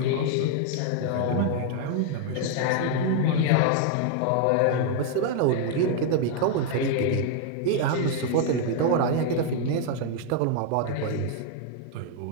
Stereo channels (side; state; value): both; different; correlation 0.00